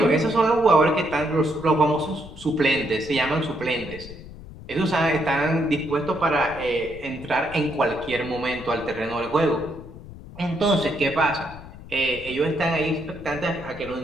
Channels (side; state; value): left; noise; rumble, 15 dB below the sound